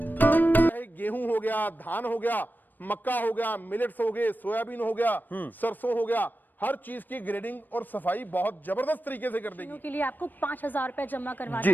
चाहे गेहूं हो गया, धान हो गया, मक्का हो गया, मिलेट्स हो गए, सोयाबीन हो गया, सरसों हो गया, हर चीज की ग्रेडिंग और सफाई बहुत जबरदस्त तरीके से कर देगी। के लिए आपको 5,000 रुपए जमा करवाना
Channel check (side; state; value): right; late; 0.090 ms